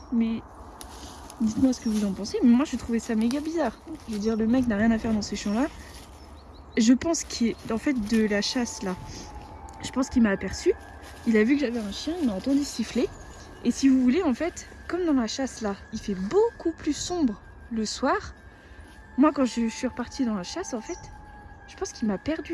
mais dites-moi ce que vous en pensez. Mais moi, je trouvais ça méga bizarre. Je veux dire, le mec n'a rien à faire dans ces champs-là. Je pense qu'il est en fait de la chasse là. Je pense qu'il m'a aperçu. Il a vu que j'avais un chien, il m'a entendu siffler. Et si vous voulez, en fait, comme dans la chasse là, il fait beaucoup plus sombre le soir. Moi, quand je suis repartie dans la chasse, en fait, je pense qu'il m'a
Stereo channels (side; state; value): both; identical; correlation 1.00